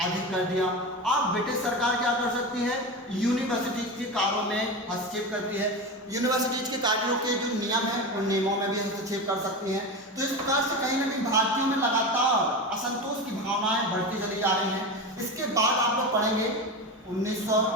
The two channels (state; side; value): normal; both; correlation 0.23